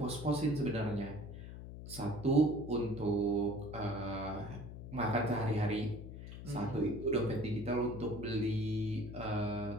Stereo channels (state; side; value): noise; left; hum, 11 dB below the sound